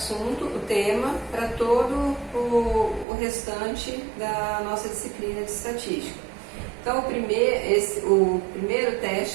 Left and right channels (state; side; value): drops out; left; at 3.1 s